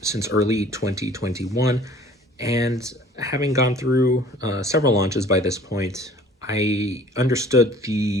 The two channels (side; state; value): both; normal; correlation 0.50